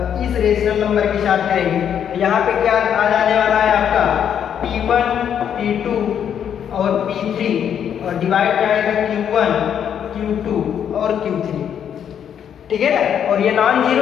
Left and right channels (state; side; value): quieter; right; 8.8 dB